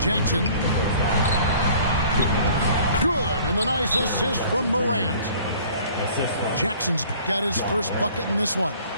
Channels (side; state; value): both; inverted; correlation -0.51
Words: Good, and the nice assist from Morant. Jackson's got his first bucket in this one.